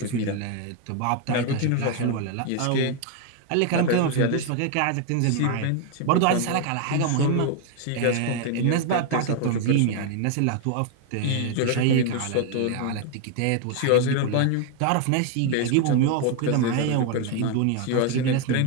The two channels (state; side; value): different; both; correlation 0.01